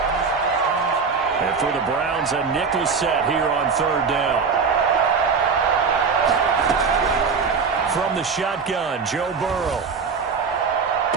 And for the Browns, a nickel set here on 3rd down. From the shotgun, Joe Burrow.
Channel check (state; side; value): quieter; left; 5.4 dB